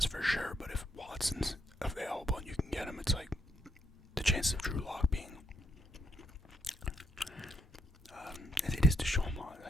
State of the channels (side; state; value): both; normal; correlation 0.76